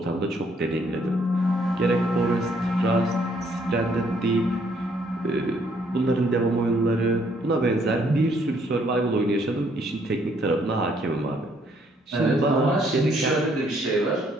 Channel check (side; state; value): both; normal; correlation 0.67